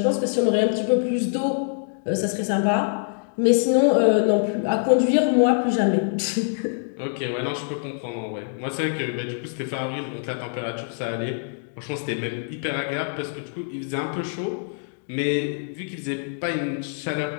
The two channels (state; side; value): silent; right; digital silence